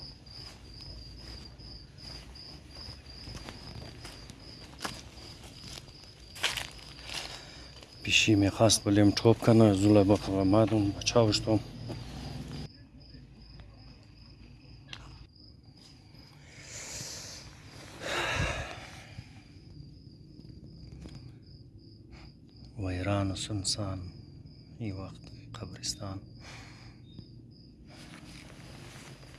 پیشی میخواست بلیم توپ کنه، زوله با مادون بچاوشتم. ویران و سنسان ای وقت قبرستان.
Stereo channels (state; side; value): identical; both; correlation 1.00